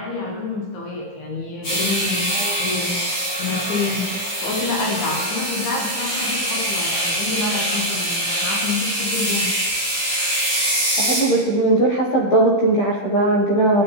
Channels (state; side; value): late; right; 15 ms